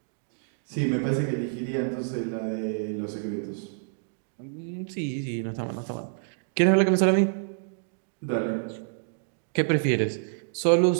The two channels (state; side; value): silent; left; digital silence